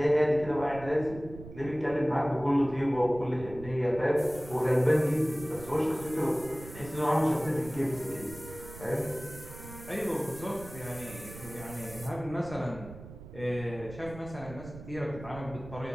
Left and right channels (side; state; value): right; noise; rumble, 14 dB below the sound